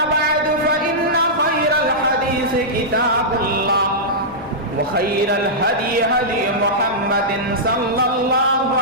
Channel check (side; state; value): both; normal; correlation -0.12